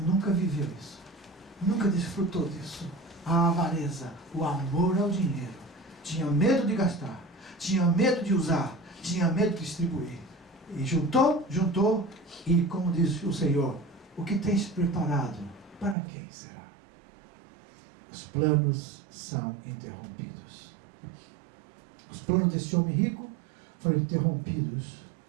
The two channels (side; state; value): left; drops out; at 16.0 s